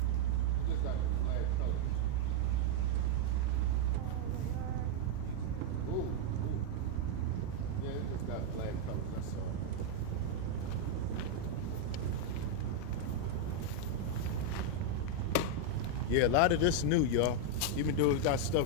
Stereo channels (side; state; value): both; different; correlation 0.00